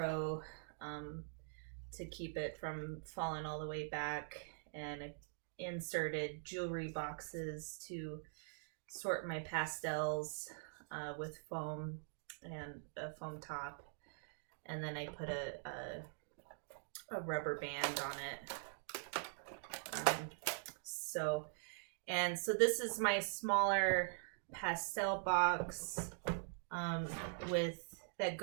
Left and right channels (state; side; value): silent; left; digital silence